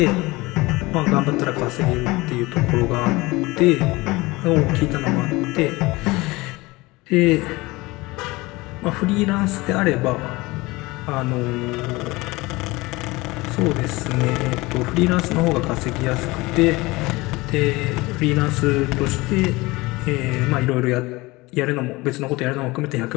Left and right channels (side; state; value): right; quieter; 21.9 dB